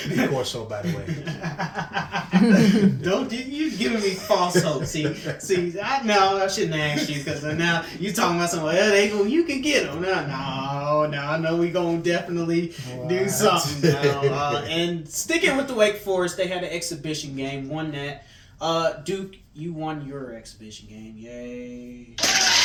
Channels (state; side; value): identical; both; correlation 1.00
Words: course, so by the way. Don't you giving me false hope? See, I shouldn't have asked you, because now you talking about something. Well, you can get them. No, I know we gonna definitely do something now. And sticking with the Wake Forest, they had an exhibition game, won that. Duke, you won your exhibition game. Yay!